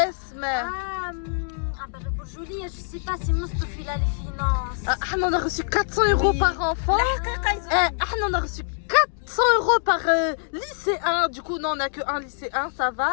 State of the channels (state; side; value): silent; right; digital silence